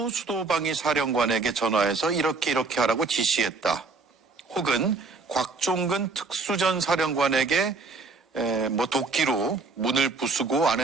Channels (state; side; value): quieter; left; 4.1 dB